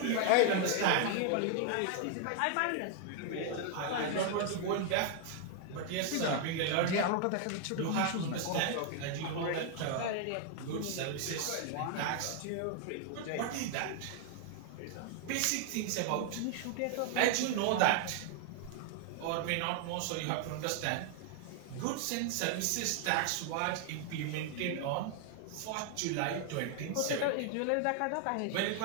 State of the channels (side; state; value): both; different; correlation 0.00